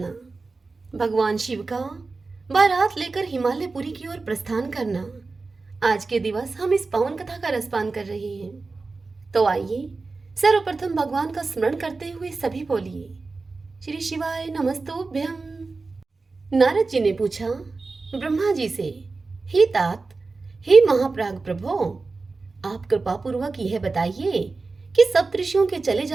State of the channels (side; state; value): left; quieter; 3.9 dB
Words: भगवान शिव का बारात लेकर हिमालयपुरी की ओर प्रस्थान करना। आज के दिवस हम इस पावन कथा का रसपान कर रहे हैं। तो आइए सर्वप्रथम भगवान का स्मरण करते हुए सभी बोलिए श्री शिवाय नमस्तुभ्यम। नारद जी ने पूछा ब्रह्मा जी से, हे तात, हे महाप्राग प्रभो, आप कृपा पूर्वक यह बताइए कि सप्तऋषियों के चले